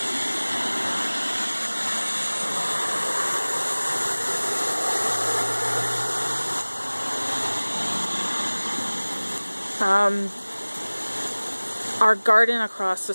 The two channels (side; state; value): both; inverted; correlation -1.00